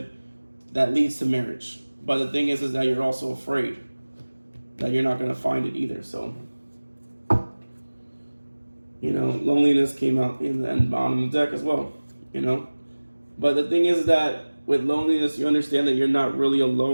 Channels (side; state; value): both; inverted; correlation -1.00